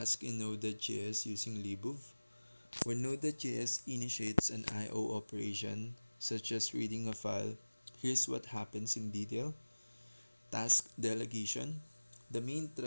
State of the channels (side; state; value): both; inverted; correlation -1.00